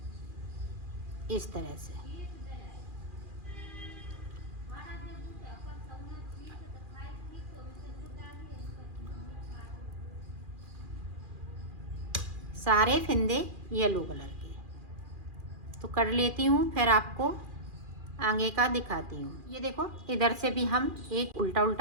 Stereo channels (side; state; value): left; late; 2.4 ms